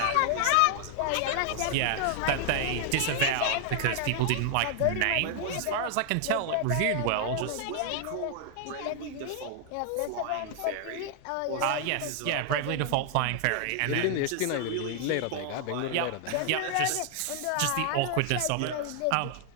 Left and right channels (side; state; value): both; different; correlation 0.00